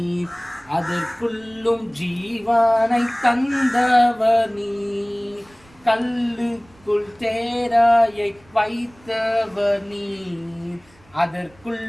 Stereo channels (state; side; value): noise; right; rumble, 29 dB below the sound